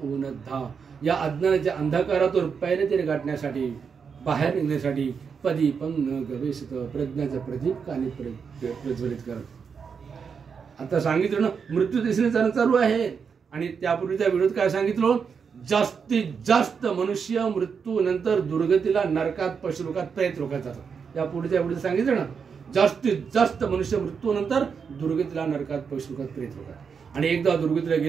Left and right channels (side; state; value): left; quieter; 6.2 dB